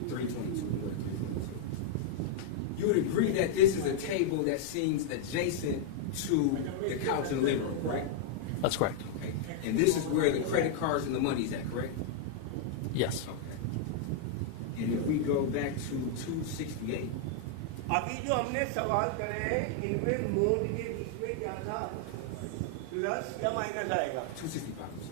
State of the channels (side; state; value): both; different; correlation -0.01